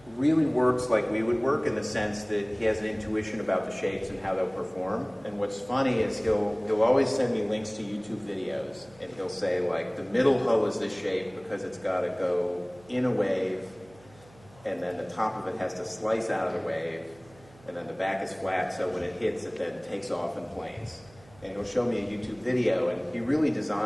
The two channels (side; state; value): right; noise; hum, 26 dB below the sound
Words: really works like we would work in the sense that he has an intuition about the shapes and how they'll perform. And what's funny is he'll always send me links to YouTube videos, and he'll say, like, the middle hull is this shape because it's got to go in a wave, and then the top of it has to slice out of the wave, and then the back is flat, so when it hits, it then takes off in planes. And he'll show me a YouTube video, and he really